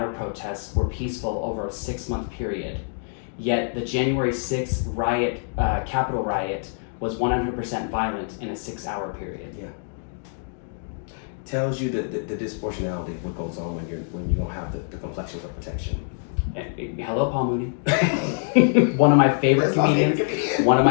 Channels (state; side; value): silent; right; 62 dB below the other